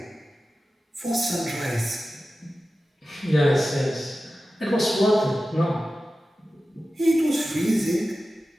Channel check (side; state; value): both; normal; correlation 0.94